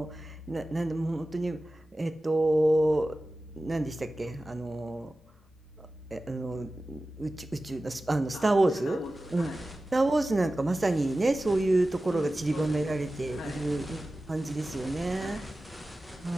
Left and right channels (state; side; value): normal; both; correlation 0.95